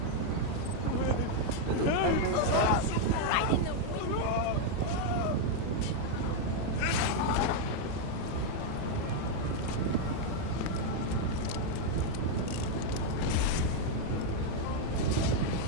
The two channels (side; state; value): both; different; correlation 0.01